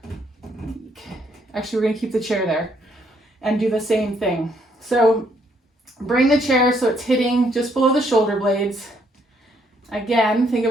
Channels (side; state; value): both; normal; correlation 0.70